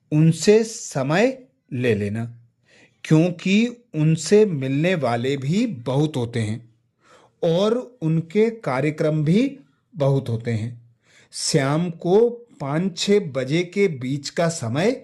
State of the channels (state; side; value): identical; both; correlation 1.00